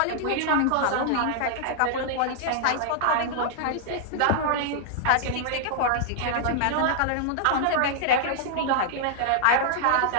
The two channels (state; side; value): different; both; correlation -0.01